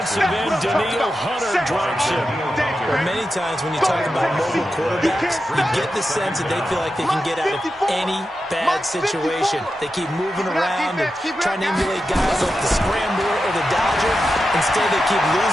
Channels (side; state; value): both; normal; correlation 0.90